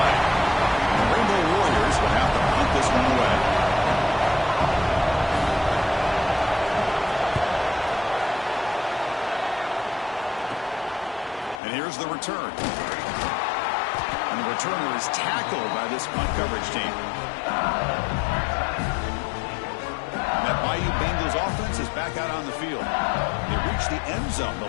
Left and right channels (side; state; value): right; drops out; at 11.6 s